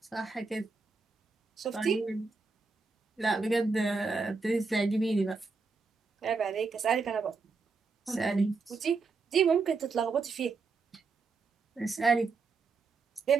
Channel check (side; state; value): left; quieter; 4.4 dB